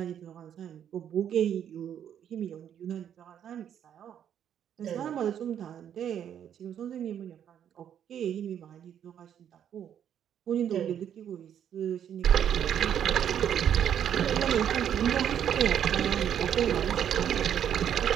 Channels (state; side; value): quieter; left; 9.4 dB